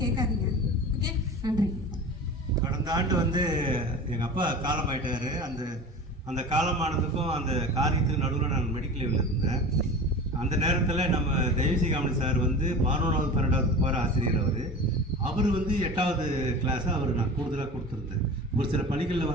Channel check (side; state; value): both; normal; correlation 0.35